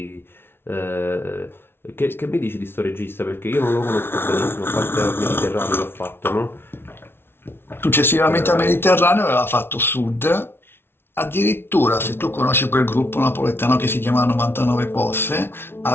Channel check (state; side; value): late; right; 0.11 ms